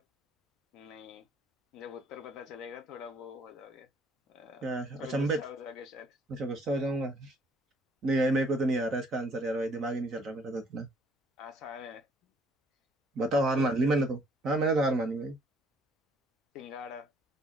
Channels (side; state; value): both; normal; correlation 0.62